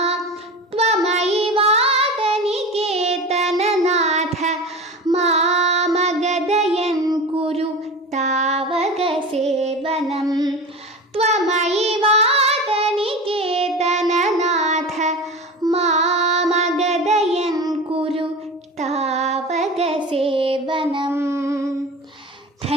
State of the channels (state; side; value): normal; both; correlation 0.30